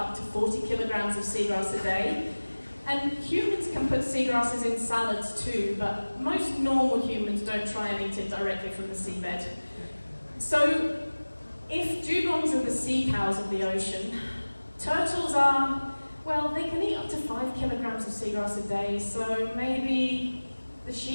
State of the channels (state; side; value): inverted; both; correlation -1.00